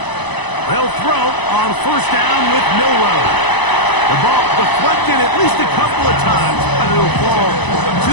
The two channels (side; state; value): right; late; 1.0 ms